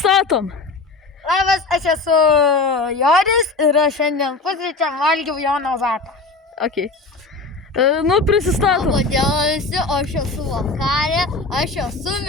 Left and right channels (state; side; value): quieter; right; 3.7 dB